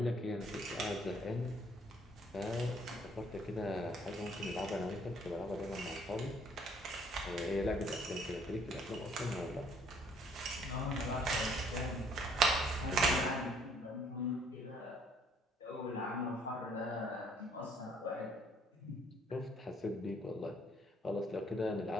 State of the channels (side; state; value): both; normal; correlation 0.63